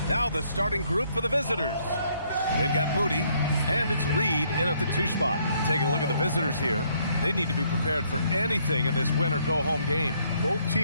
Now the starting group for the visitors. They've got Moody, and it's Reed in at the 2 spot. Taking a look at the visitors here. They need to be prepared for anything in this win-or-go-home game. Both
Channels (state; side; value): inverted; both; correlation -0.68